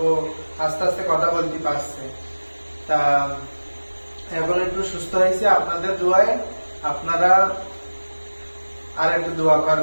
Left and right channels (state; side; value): inverted; both; correlation -1.00